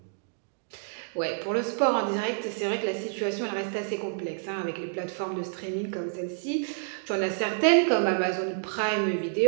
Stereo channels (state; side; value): silent; left; digital silence